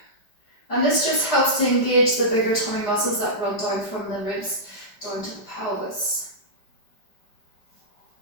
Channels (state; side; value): late; right; 4.9 ms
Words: And this just helps to engage the bigger tummy muscles that run down from the ribs down to the pelvis.